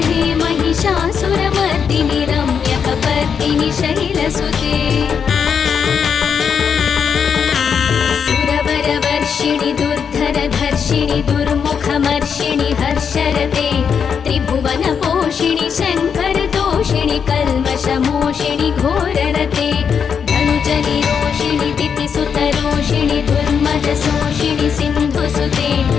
हे महिषासुरमर्दिनि रम्यकपर्दिनि शैलसुते सुरवरवर्षिणि दुर्धरधर्षिणि दुर्मुखमर्षिणि हर्षरते त्रिभुवनपोषिणि शङ्करतोषिणि कल्मषमोषिणि घोररते धनुजनिरोषिणि दितिसुतरोषिणि दुर्मदशोषिणि सिन्धुसुते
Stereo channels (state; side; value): quieter; right; 6.9 dB